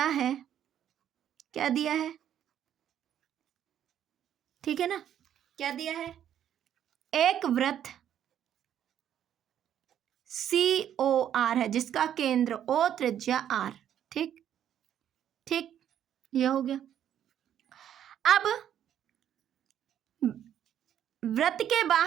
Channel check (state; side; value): quieter; left; 10.2 dB